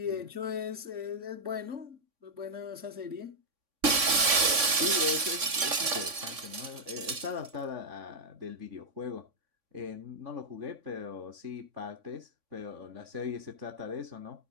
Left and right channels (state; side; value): late; left; 3.5 ms